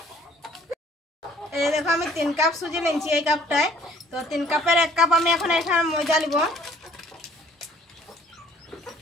এই দেখো, আমি 3 কাপ সুজি নিয়েছি এই কাপটায়। তো 3 কাপের 1 কাপ আমি এখন এখানে ময়দা নিব।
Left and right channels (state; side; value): normal; both; correlation 0.57